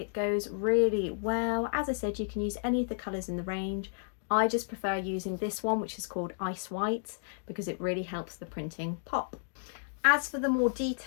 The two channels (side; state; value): right; silent; digital silence